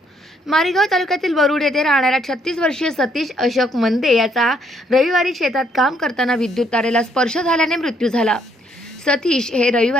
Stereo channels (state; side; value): normal; both; correlation 0.69